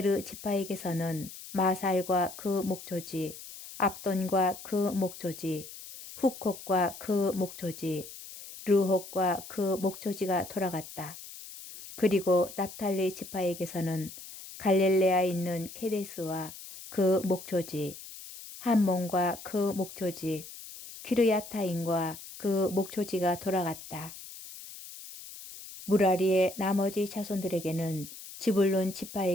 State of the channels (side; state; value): left; noise; hiss, 14 dB below the sound